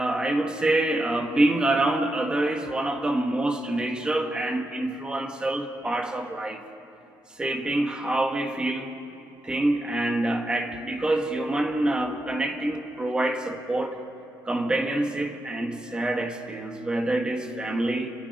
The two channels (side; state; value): both; normal; correlation 0.86